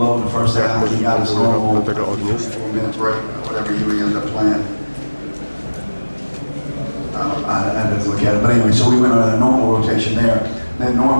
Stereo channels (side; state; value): both; inverted; correlation -1.00